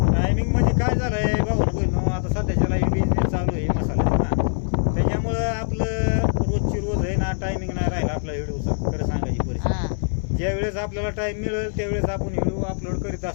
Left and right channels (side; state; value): right; silent; 59 dB below the other